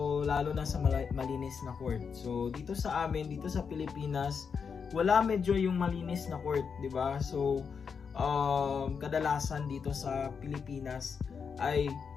lalo na sa malinis na court. So dito sa amin, dito sa Pilipinas, wala medyo yung malinis na court, 'di ba? So kadalasan dito sa Pilipinas ay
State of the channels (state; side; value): quieter; right; 6.1 dB